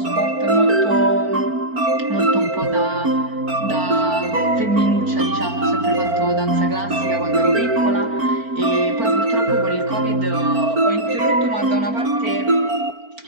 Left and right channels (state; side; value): late; left; 4.5 ms